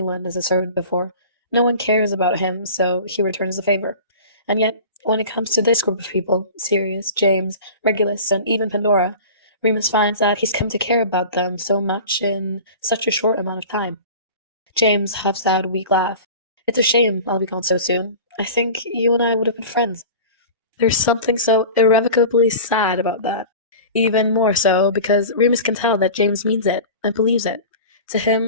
as a servant before. No one cares about him, so he returns the favor. And yet, when it comes to this group of people, Sirius, James, Regulus, and even Pandora, Remus finds that he's come to care about them so much in such a short amount of time. James huffs out a weak laugh. "It's a shame I'll be gone so soon. I think you and I would have been friends." There's something so irrevocably sad about that. Even more so because Remus can tell that James means it and believes it. To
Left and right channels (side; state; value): both; inverted; correlation -0.37